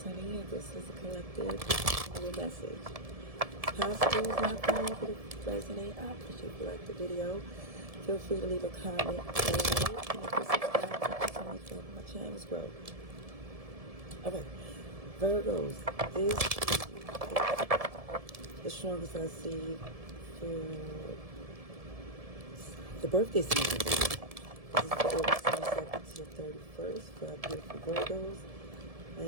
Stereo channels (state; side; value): late; left; 1.7 ms